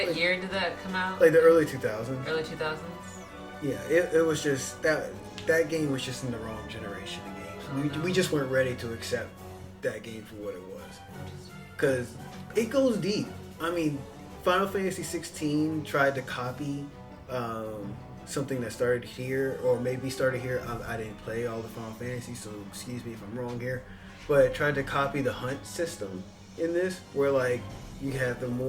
year did that come out? Like the early 2000s. Early 2000s? Yeah, it was just that game was just in the wrong generation of games. We just weren't ready to accept that game for what it was, because it goes deep. I mean, Final Fantasy 16 tried to copy something that started here, or maybe started here. I didn't play all the Final Fantasy, so excuse me if I'm wrong here, but it tried to copy the hunt system in this, where like you have the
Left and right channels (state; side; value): identical; both; correlation 1.00